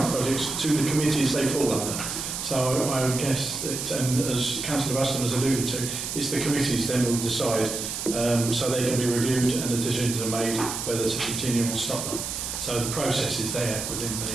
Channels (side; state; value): right; noise; hiss, 4 dB below the sound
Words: projects to the committees they fall under. So I would guess that, and as Councillor Buston has alluded to, it's the committees then will decide, so they can be reviewed and the decisions are made whether to continue or stop them. So the process is there within